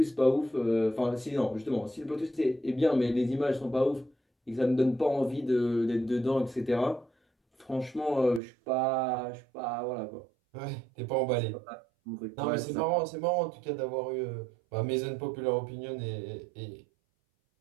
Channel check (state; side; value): drops out; left; at 8.4 s